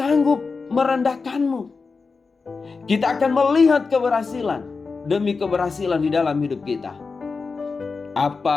merendahkanmu. Kita akan melihat keberhasilan demi keberhasilan di dalam hidup kita.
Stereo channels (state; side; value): quieter; right; 4.5 dB